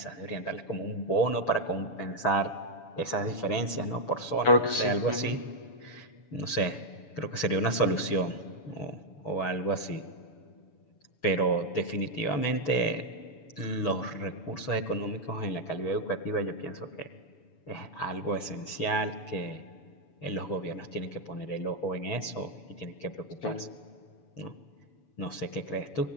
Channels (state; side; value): late; right; 7.0 ms